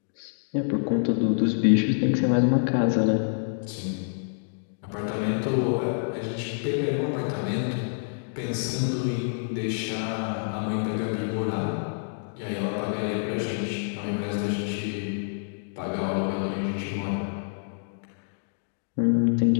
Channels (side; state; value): right; silent; digital silence